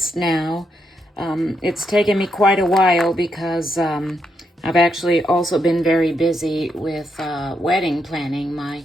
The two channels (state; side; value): normal; both; correlation 0.80